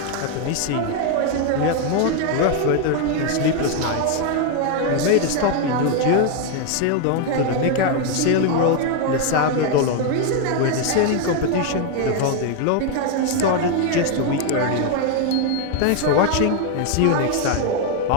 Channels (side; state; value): both; different; correlation 0.01